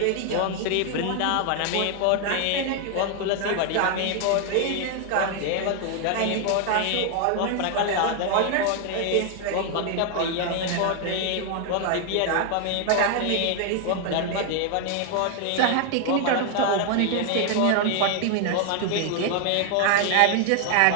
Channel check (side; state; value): both; different; correlation 0.00